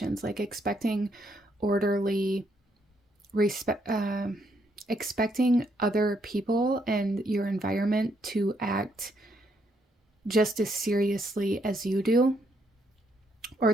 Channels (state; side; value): normal; both; correlation 0.74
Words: like expecting orderly expecting other people and your environment to act just as seriously as you do,